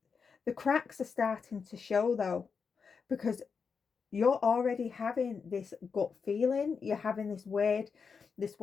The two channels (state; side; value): quieter; right; 5.6 dB